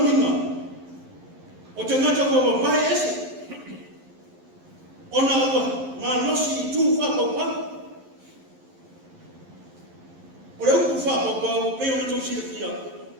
minga. O te ngata kua wapai ese. Ona ua ngā nosi i tū whapapau. O le upu whapapau, peo na tau sira fia.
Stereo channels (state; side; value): late; left; 11 ms